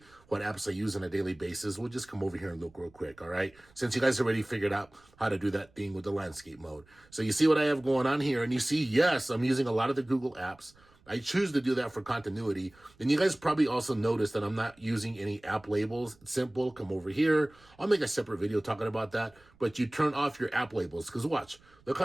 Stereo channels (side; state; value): right; noise; rumble, 29 dB below the sound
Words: what apps I use on a daily basis, we'll just come over here and look real quick, all right? Since you guys already figured out how to do that thing with the landscape mode. So you see what I have going on here, and you see, yes, I'm using a lot of the Google apps. I choose to do that for continuity. And you guys probably also noticed that I'm not using any app labels. It's simple. Come over here. I'll make a separate video talking about that. But you turn off your app labels, because watch, look